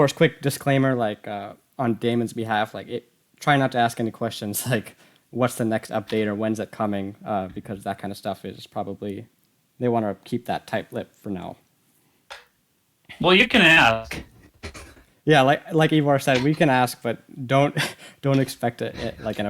quick disclaimer, on Damon's behalf, try not to ask any questions like what's the next update or when's it coming, because that kind of stuff is probably they want to keep that tight-lipped for now. Well, you can ask. Yeah, like Ivar said, we can ask, but don't don't expect like an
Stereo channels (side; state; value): both; identical; correlation 1.00